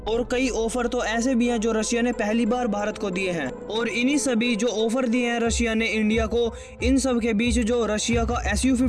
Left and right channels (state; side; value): identical; both; correlation 1.00